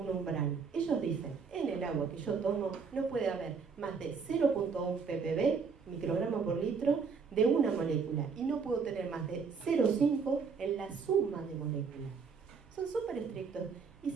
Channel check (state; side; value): quieter; left; 5.5 dB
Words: Ellos dicen, en el agua que yo tomo no puede haber más de 0.1 ppb, microgramos por litro, de una molécula, y no puedo tener más de 0.5 en la suma de moléculas. Son súper estrictos. Y